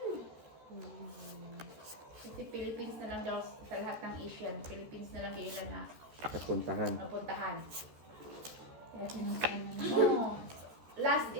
Kasi Philippines na lang daw sa lahat ng Asian. Philippines na lang yung ilan na Napuntahan. mapuntahan. Oo. Last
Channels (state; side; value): late; left; 13 ms